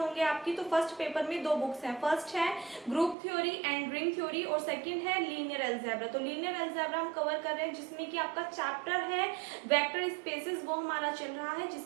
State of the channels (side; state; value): left; drops out; at 3.2 s